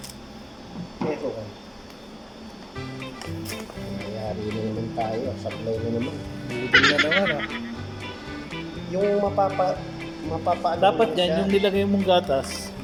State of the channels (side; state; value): both; identical; correlation 1.00